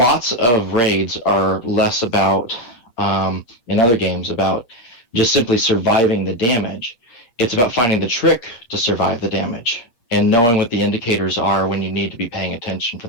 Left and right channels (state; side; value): late; right; 8.6 ms